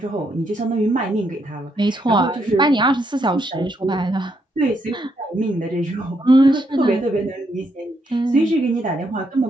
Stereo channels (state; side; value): normal; both; correlation 0.76